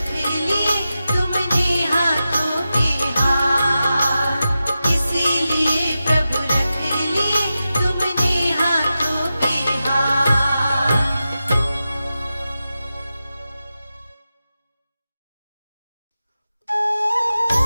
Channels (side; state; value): both; inverted; correlation -0.92